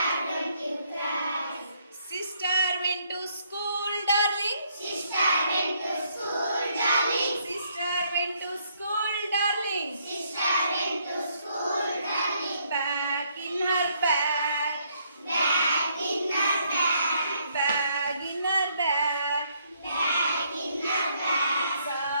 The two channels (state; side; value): inverted; both; correlation -0.70